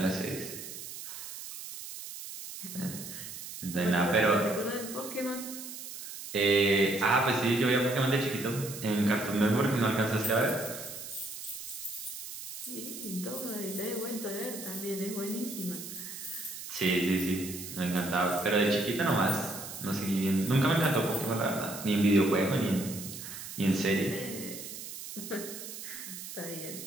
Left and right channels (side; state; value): right; noise; hiss, 10 dB below the sound